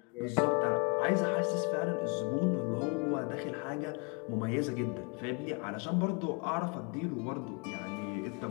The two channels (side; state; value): right; quieter; 33.8 dB